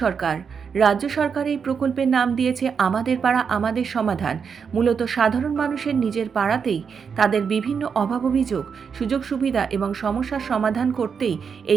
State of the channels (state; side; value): quieter; left; 6.3 dB